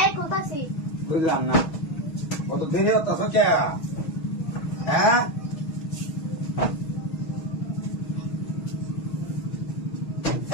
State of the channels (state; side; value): late; right; 6.2 ms